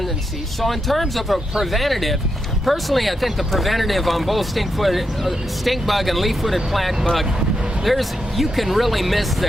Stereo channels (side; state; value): both; normal; correlation 0.84